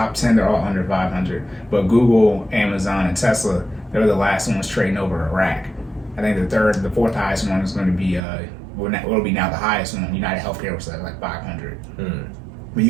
10, they're all under 500. But Google, Amazon, and Tesla, they're the last ones trading over a rack. I think the fourth highest one is going to be will be now the highest one. United Healthcare was like 500. But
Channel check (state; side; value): drops out; left; at 8.2 s